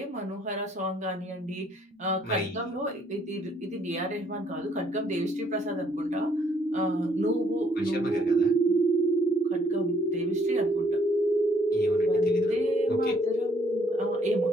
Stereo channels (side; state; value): both; normal; correlation 0.66